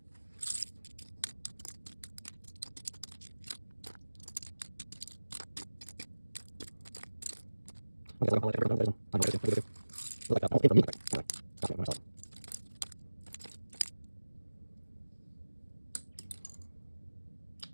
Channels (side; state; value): both; inverted; correlation -1.00